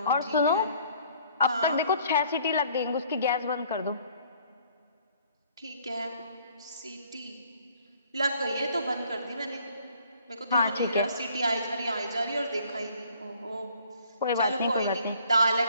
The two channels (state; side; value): inverted; both; correlation -0.59